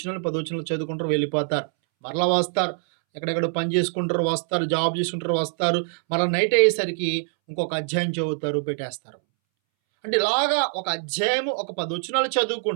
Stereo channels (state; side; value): silent; left; 62 dB below the other